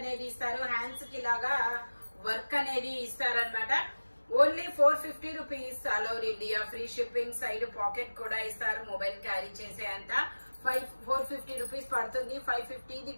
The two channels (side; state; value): both; inverted; correlation -1.00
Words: ఇస్తారు, హ్యాండ్స్ కి ఇలాగా వర్క్ అనేది ఇస్తారనమాట. Only 450 rupees, all over India free shipping, side pocket కూడా ఇస్తారు, మొబైల్ క్యారీ చేసే అంత 450 రూపీస్ పడుతుంది. 550